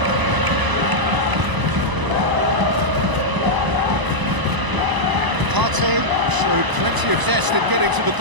Partey showed plenty of zest in getting to the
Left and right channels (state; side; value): late; left; 1.0 ms